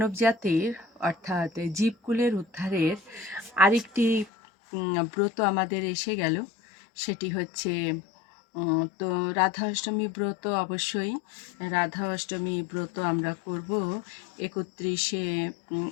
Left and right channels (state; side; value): drops out; right; at 4.3 s